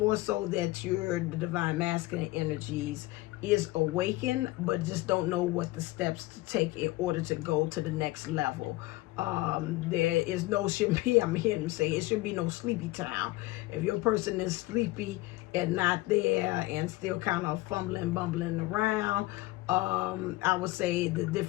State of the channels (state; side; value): quieter; right; 19.5 dB